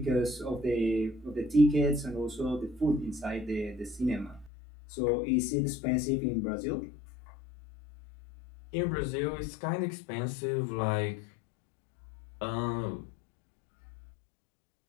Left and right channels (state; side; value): drops out; right; at 4.5 s